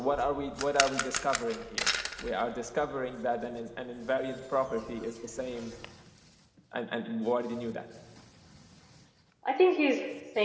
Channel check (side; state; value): both; identical; correlation 1.00